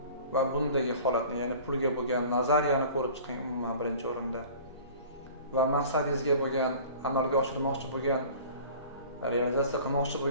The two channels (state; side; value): inverted; both; correlation -0.44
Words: va bundagi holatni, ya'ni pulga bo'lgan nazariyani ko'rib chiqing umuman birinchi o'rinda. Va maqsadingizga bo'lgan, amalga oshirmoqchi bo'lgan, realizatsiya qilmoqchi